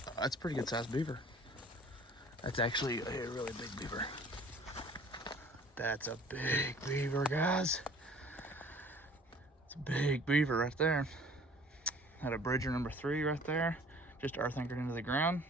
That's a pretty good sized beaver. That's actually a really big beaver. That's a big beaver, guys. It's a big beaver right there. Had a bridger number 3 right there, just earth anchored into the ground.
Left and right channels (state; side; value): normal; both; correlation 0.51